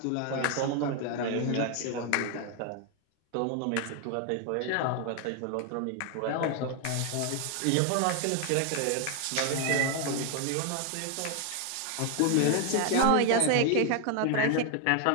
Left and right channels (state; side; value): different; both; correlation 0.01